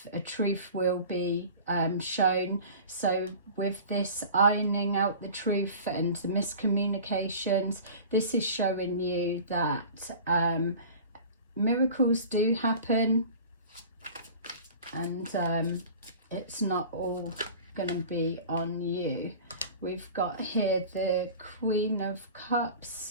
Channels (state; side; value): inverted; both; correlation -0.40